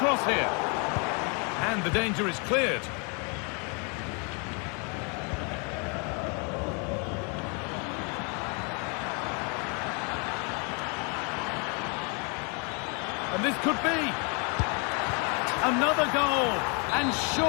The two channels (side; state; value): right; quieter; 35.1 dB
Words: here. And the danger is cleared. And this could be another goal. And